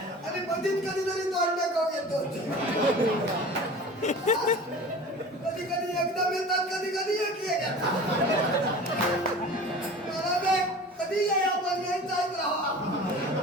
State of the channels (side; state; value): both; normal; correlation 0.38